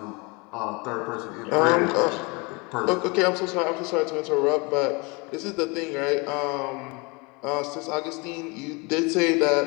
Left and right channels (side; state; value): right; quieter; 28.3 dB